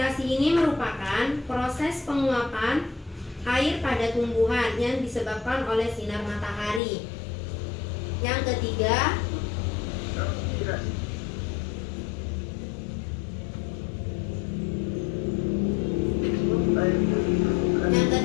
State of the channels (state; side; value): drops out; right; at 6.8 s